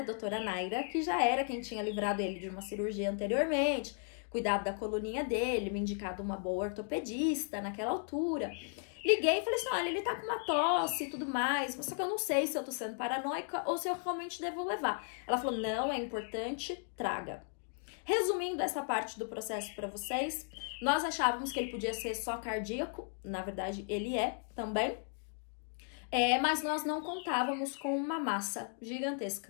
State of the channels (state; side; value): silent; right; 54 dB below the other